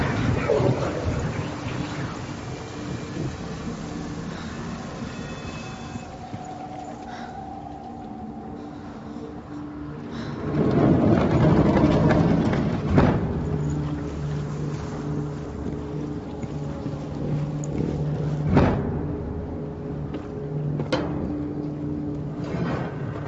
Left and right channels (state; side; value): identical; both; correlation 1.00